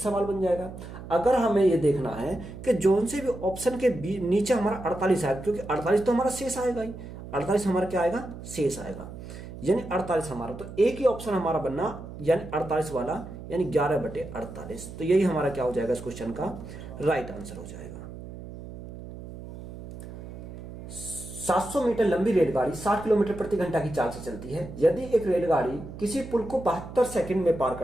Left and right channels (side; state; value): right; noise; hum, 12 dB below the sound